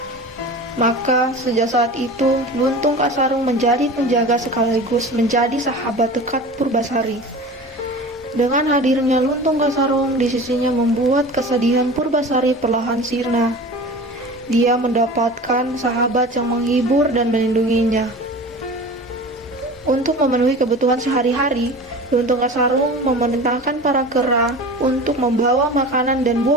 Maka, sejak saat itu, Luntung Kasarung menjadi penjaga sekaligus menjadi sahabat dekat Purbasari. Dengan hadirnya Luntung Kasarung di sisinya membuat kesedihan Purbasari perlahan sirna. Dia mendapatkan sahabat yang menghibur dan melindunginya. Untuk memenuhi kebutuhan sehari-hari, Luntung Kasarung memerintahkan para kera untuk membawa makanan dan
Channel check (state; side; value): normal; both; correlation 0.36